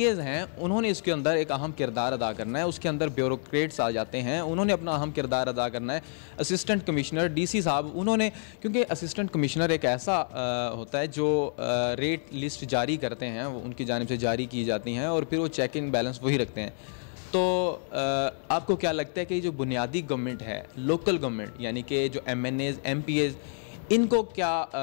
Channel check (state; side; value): silent; right; 59 dB below the other